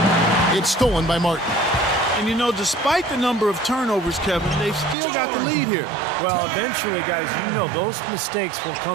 It's stolen by Martin. And, you know, despite the number of turnovers, Kevin, they've still got the lead here. Well, eventually, guys, you know those mistakes will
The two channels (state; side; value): drops out; left; at 5.0 s